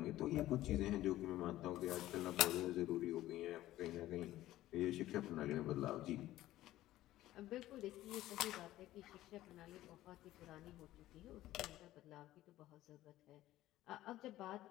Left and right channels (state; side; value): quieter; right; 15.0 dB